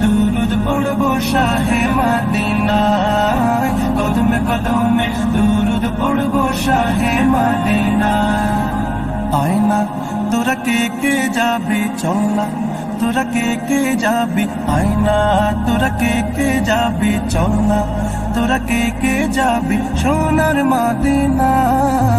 দুরুদ পড়বো শাহে মদিনায়, কদমে কদমে দুরুদ পড়বো শাহে মদিনায়। আয়না তোরা কে কে যাবি চল না, তোরা কে কে যাবি আয়না, তোরা কে কে যাবি চল না, তোরা কে কে যাবি সোনার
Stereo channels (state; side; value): identical; both; correlation 1.00